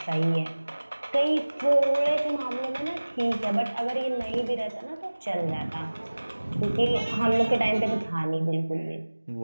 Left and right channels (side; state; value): both; inverted; correlation -1.00